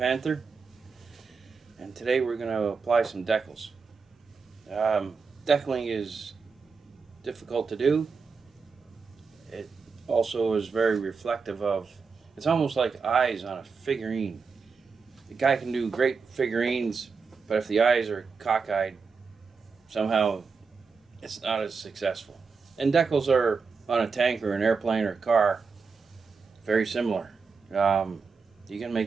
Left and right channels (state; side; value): quieter; left; 5.1 dB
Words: And today we're going to apply some decals. Decaling is difficult to do. It also is very reflective of, it's almost like eyes on a figurine. The guy can do great figurines, but if the eyes are cockeyed, somehow it's not as successful. And decals are on a tank or an airplane or a car very similar. You can